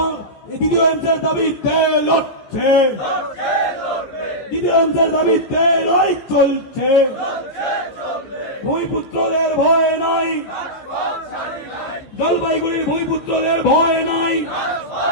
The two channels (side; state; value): right; late; 15 ms